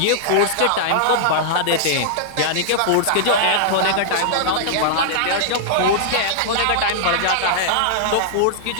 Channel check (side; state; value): both; different; correlation -0.01